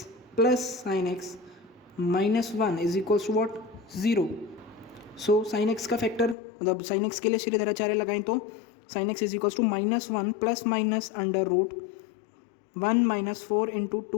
plus sine x minus 1 is equals to what 0। So sine x का factor, मतलब sine x के लिए श्रीधराचार्य लगाएं तो sine x is equals to -1 plus minus under root 1 minus 4 into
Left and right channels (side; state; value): right; drops out; at 6.4 s